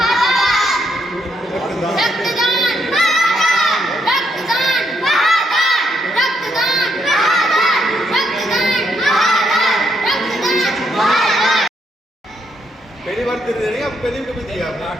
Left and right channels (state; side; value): normal; both; correlation 0.76